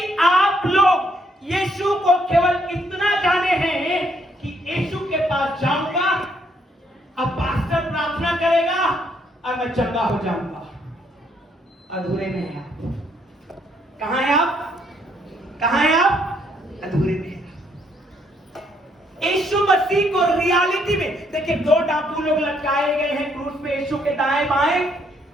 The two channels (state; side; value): normal; both; correlation 0.71